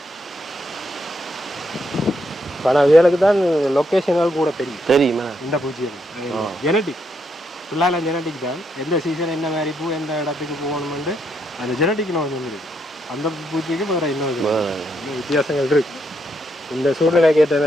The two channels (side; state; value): both; normal; correlation 0.77